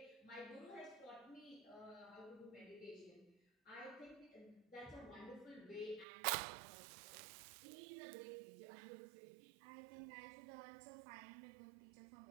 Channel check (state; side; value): drops out; left; at 6.1 s